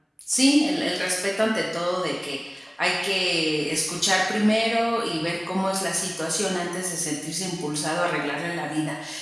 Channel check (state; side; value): identical; both; correlation 1.00